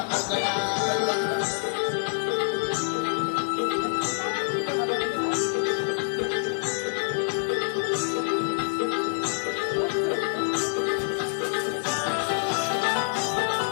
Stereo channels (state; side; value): silent; right; digital silence